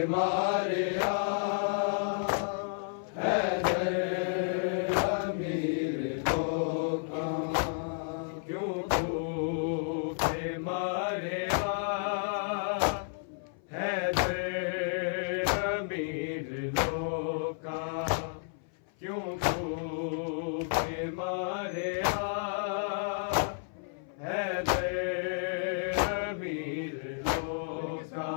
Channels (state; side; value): silent; right; 57 dB below the other